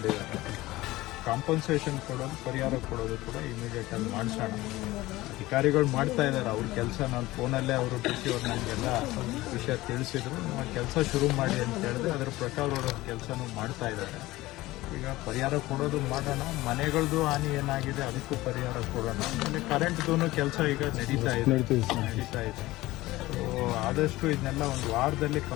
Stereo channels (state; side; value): quieter; right; 18.3 dB